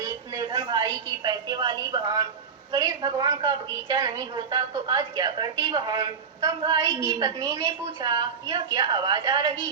निर्धन भाई की पैसे वाली बहन, गणेश भगवान का बगीचा नहीं होता तो आज क्या करती बहन? तब भाई की पत्नी ने पूछा, यह क्या आवाज आ रही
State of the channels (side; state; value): left; quieter; 6.2 dB